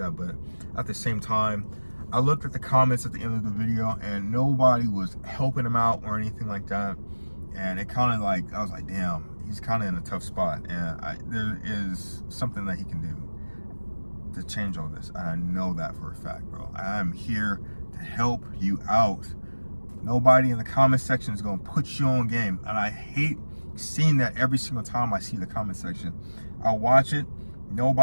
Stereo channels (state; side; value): inverted; both; correlation -1.00